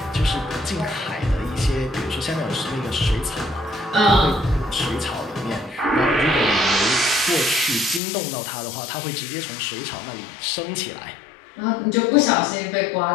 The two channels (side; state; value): right; drops out; at 8.0 s